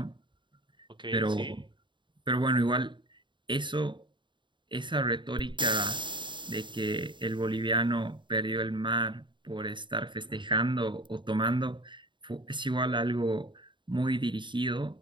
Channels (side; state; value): left; late; 0.23 ms